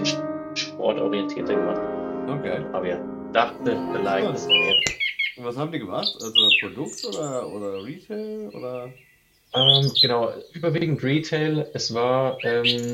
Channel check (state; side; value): identical; both; correlation 1.00